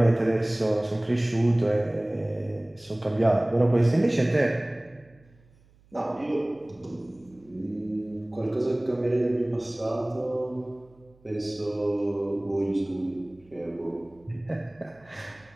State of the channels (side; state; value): right; noise; hum, 30 dB below the sound